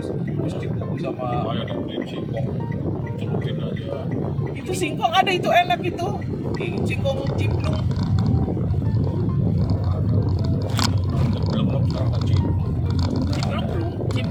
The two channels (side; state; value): both; identical; correlation 1.00